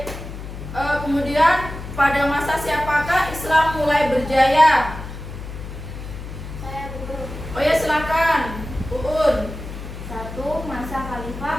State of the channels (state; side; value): noise; left; hum, 10 dB below the sound